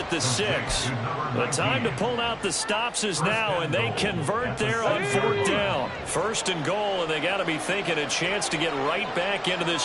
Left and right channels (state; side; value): identical; both; correlation 1.00